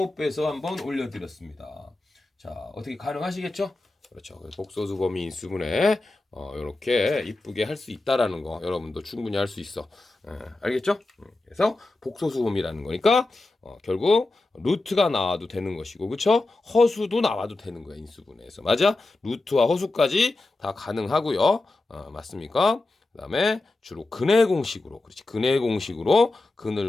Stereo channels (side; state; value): right; quieter; 3.0 dB